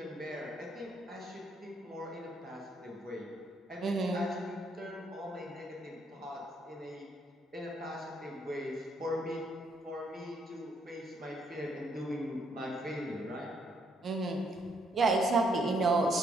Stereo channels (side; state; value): both; normal; correlation 0.72